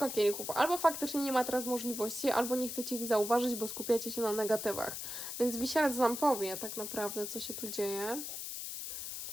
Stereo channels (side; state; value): left; noise; hiss, 6 dB below the sound